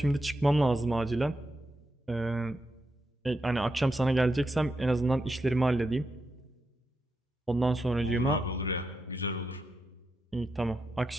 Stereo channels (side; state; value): both; normal; correlation 0.85